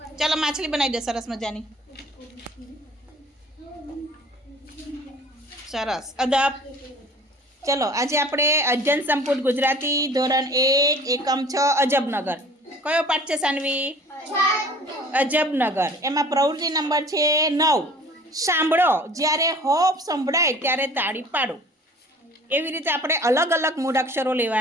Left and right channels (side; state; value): both; normal; correlation 0.48